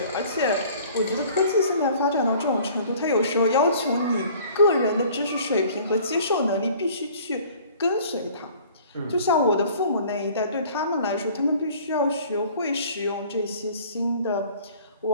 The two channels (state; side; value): inverted; both; correlation -0.51